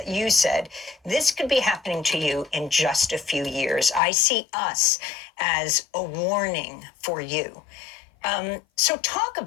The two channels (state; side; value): drops out; right; at 4.0 s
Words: said, this could be happening to you in just a few years. I see us as a warning for you. So talk